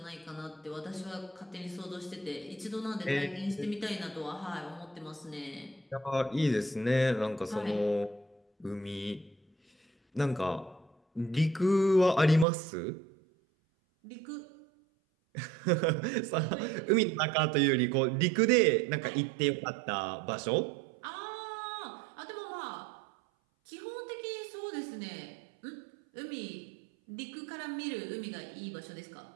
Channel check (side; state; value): left; drops out; at 12.5 s